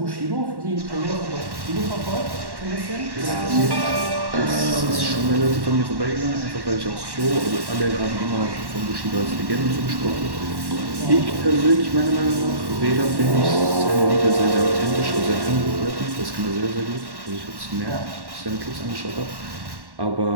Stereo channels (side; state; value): left; late; 1.1 ms